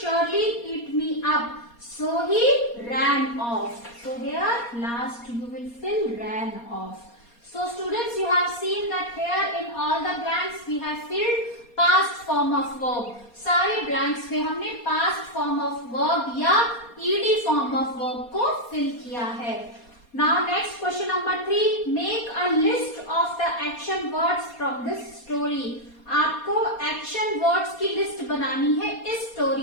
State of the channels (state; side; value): late; right; 4.2 ms